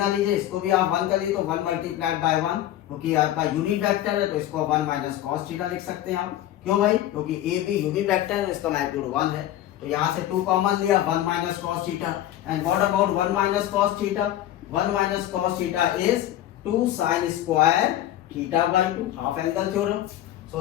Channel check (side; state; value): right; quieter; 12.9 dB